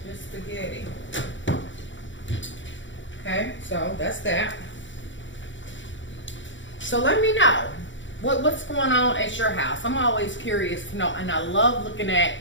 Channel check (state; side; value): late; right; 0.55 ms